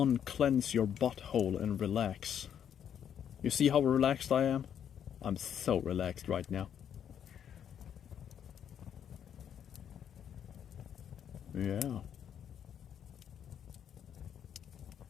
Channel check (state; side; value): quieter; right; 8.9 dB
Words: your butthole and relax. You see how relaxed I am? I'm so relaxed right now. Yeah.